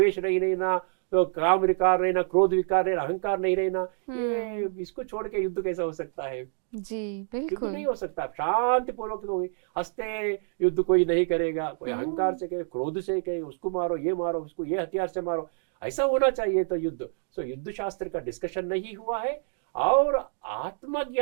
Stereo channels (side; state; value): left; silent; digital silence